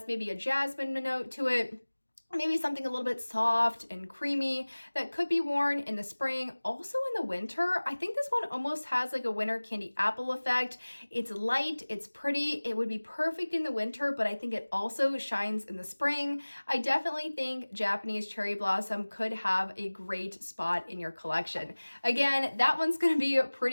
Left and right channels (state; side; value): inverted; both; correlation -1.00